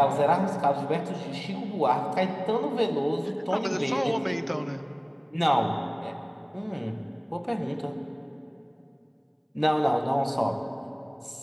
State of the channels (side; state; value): both; identical; correlation 1.00